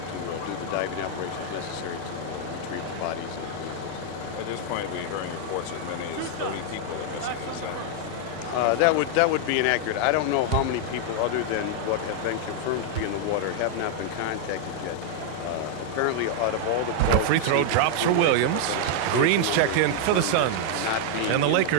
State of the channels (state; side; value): different; both; correlation 0.00